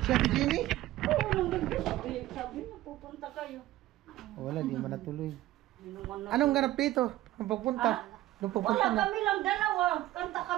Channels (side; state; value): left; quieter; 15.7 dB